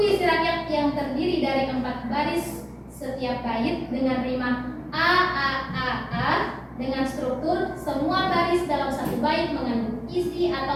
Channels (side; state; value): both; identical; correlation 1.00